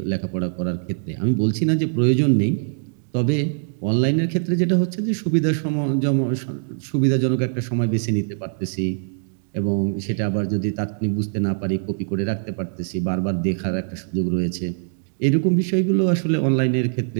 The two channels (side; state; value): left; silent; digital silence